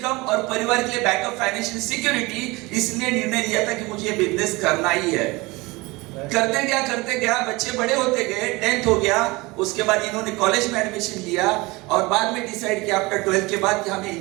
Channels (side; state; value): left; quieter; 23.4 dB